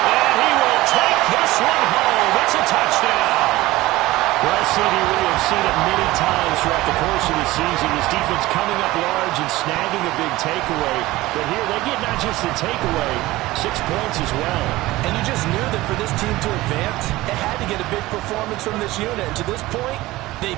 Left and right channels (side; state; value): left; quieter; 18.3 dB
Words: he will take this one home. It's a touchdown. Well, CD, we have seen it many times throughout the course of the season. This defense coming up large and snagging a big takeaway. But here they get not just the takeaway, 6 points as well. And you just knew that for this team to advance, it had to get a big performance from this unit. And to this point,